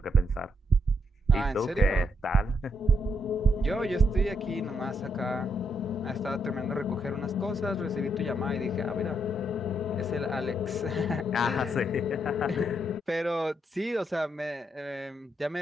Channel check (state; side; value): normal; both; correlation 0.78